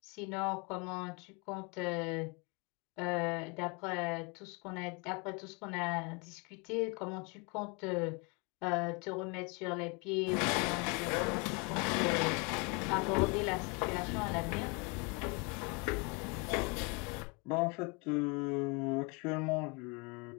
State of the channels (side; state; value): right; quieter; 30.7 dB